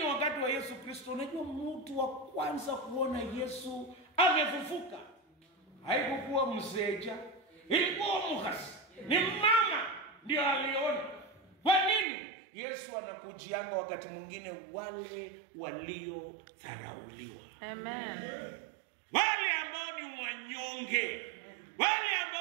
wakati wa Yesu Kristo, unajua mtu wa kwanza kuona Yesu amefufuka haikuwa mseja, ilikuwa Mukhasi. Ni mama ndio aliona. Kwa nini? Yesu anakujianga wakati mwingine wale waliodharauliwa. Amen. Wale ambao ni wanyonge, wale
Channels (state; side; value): drops out; left; at 12.1 s